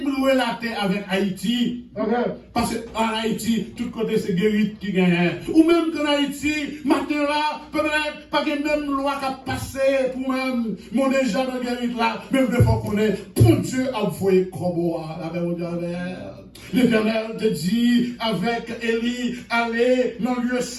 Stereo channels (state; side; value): identical; both; correlation 1.00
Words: la terre avec Haïti. Parce qu'en Haïti, tout côté c'est guérit qui gagne. Ou même qu'en Haïti, matin là, peut-être pas que même loi qui a passé pour même mon déjà dans guérit là, même de fois qu'on est, pour Dieu a envoyé Koboa, l'Éternel te dit avec Élie, allez dans le lieu